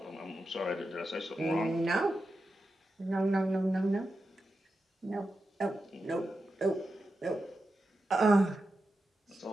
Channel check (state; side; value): normal; both; correlation 0.90